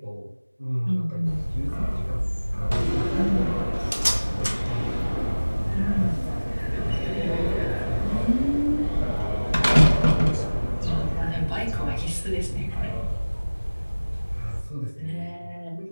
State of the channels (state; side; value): inverted; both; correlation -1.00